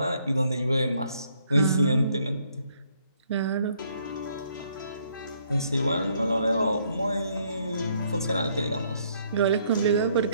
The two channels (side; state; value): both; inverted; correlation -0.68